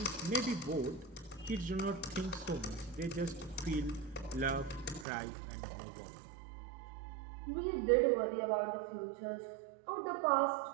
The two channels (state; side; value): drops out; left; at 5.1 s